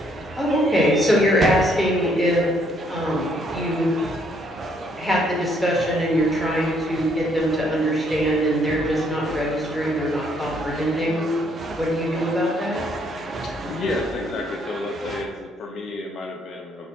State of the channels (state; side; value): normal; both; correlation 0.68